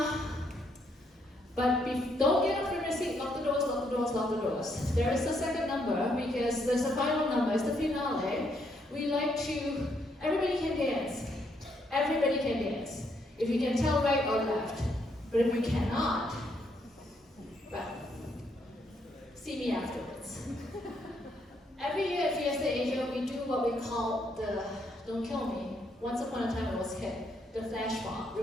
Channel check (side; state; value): both; normal; correlation 0.74